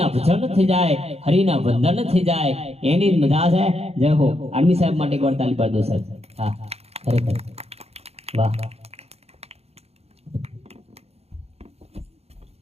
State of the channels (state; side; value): late; left; 0.30 ms